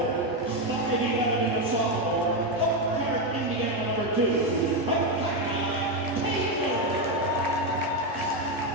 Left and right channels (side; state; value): both; normal; correlation 0.07